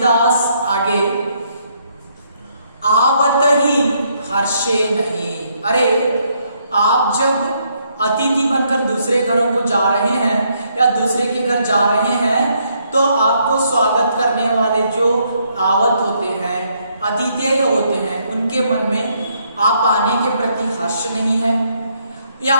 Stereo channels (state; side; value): inverted; both; correlation -0.72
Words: आगे, आवत ही हर्षे नहीं. अरे आप जब अतिथि बनकर दूसरे घरों को जा रहे हैं या दूसरे के घर जा रहे हैं तो आपको स्वागत करने वाले जो आवत होते हैं, अतिथेय होते हैं, उनके मन में आप आने के प्रति हर्ष नहीं है, या